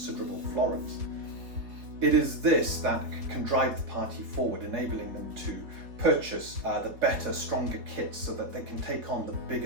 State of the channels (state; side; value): late; left; 4.2 ms